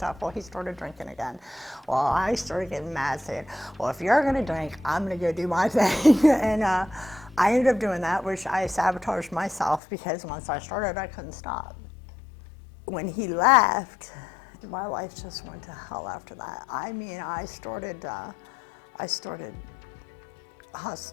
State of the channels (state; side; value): drops out; right; at 9.8 s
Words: Well, he started drinking again. Well, I started getting mad, saying, well, if you're going to drink, I'm going to go do my thing. And I ended up doing that, which I sabotaged myself because once I started, I couldn't stop. When he left, my life just went to hell after that. I mean, I started